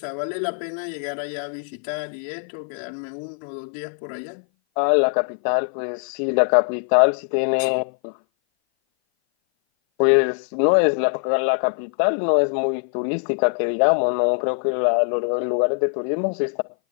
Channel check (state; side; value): silent; right; 58 dB below the other